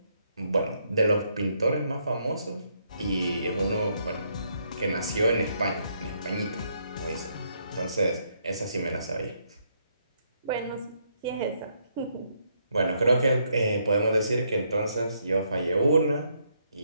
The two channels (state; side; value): inverted; both; correlation -0.74